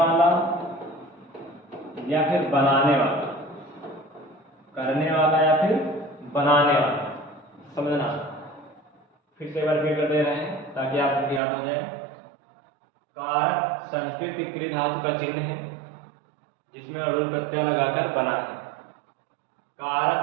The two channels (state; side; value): drops out; left; at 11.4 s